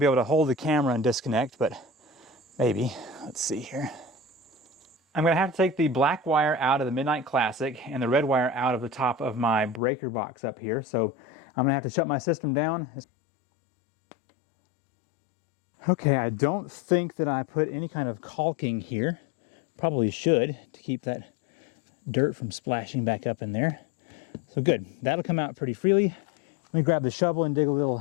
able to hold the camera and disconnect, but maybe. Let's see here. I'm going to have to take the black wire out of the Midnight Classic and the red wire out of the top of my breaker box up here. So I'm going to have to shut my system down. Okay, I don't think that I put any kind of caulking here. Probably should, to keep that dirt from splashing back up in there. So good, that'll come out pretty freely. Let me grab the shovel and dig a little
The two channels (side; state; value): right; drops out; at 9.8 s